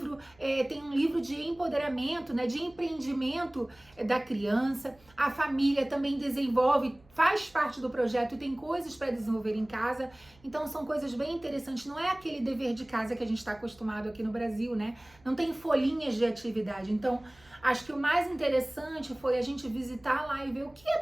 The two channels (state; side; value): noise; right; hum, 28 dB below the sound